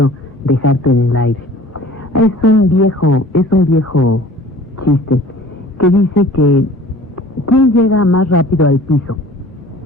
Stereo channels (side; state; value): both; normal; correlation 0.47